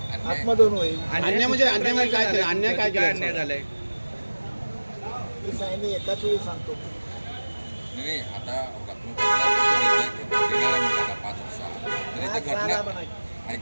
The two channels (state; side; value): inverted; both; correlation -1.00